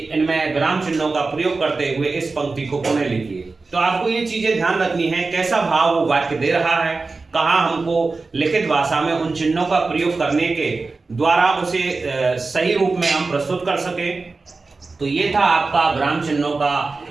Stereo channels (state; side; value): quieter; left; 3.9 dB